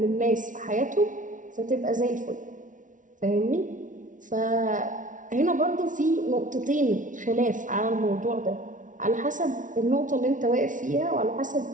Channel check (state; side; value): late; left; 0.37 ms